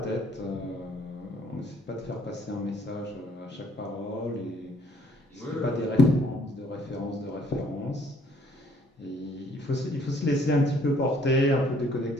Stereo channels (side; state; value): both; normal; correlation 0.63